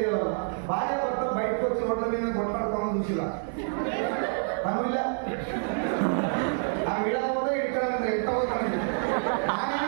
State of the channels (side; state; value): left; silent; 60 dB below the other